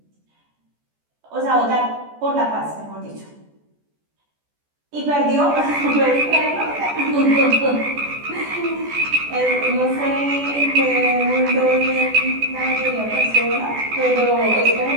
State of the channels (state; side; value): late; left; 14 ms